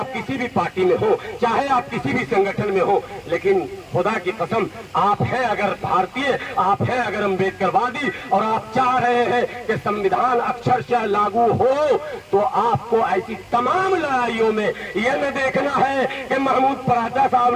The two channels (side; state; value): both; identical; correlation 1.00